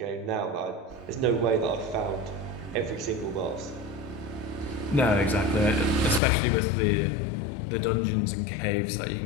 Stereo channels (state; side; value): drops out; right; at 6.2 s